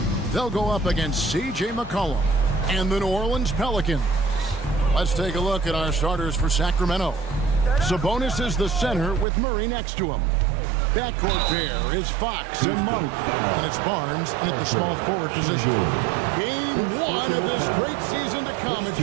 they'll go up against C.J. McCollum and the New Orleans Pelicans. Let's take a look at our starters for Sacramento. Sabonis is the center with Murray next to him. Backcourt pair is Fox and Monk, and it's Barnes in at the small forward position. Game 1 of this great season to come. It's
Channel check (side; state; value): left; drops out; at 9.2 s